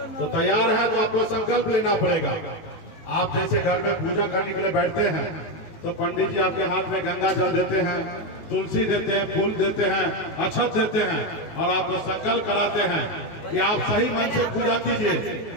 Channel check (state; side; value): late; right; 18 ms